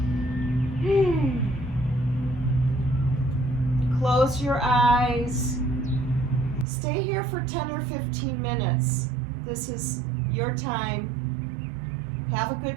Close your eyes. Stay here for 10 or 15 minutes. This is your time. Have a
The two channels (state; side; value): drops out; left; at 6.7 s